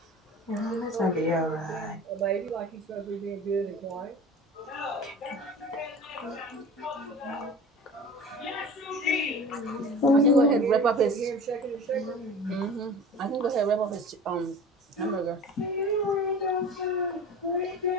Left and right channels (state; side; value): normal; both; correlation 0.37